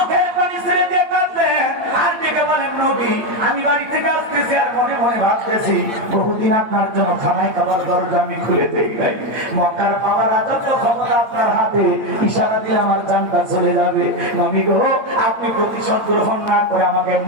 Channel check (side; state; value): left; late; 8.6 ms